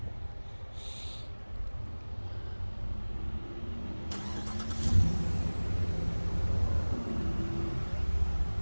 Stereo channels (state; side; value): inverted; both; correlation -1.00